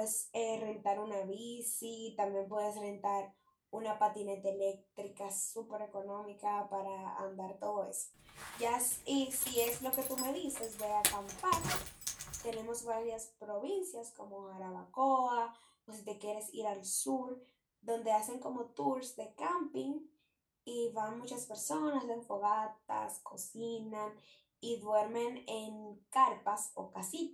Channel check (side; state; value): both; identical; correlation 1.00